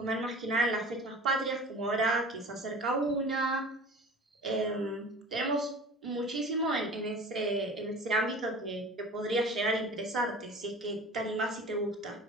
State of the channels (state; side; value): normal; both; correlation 0.40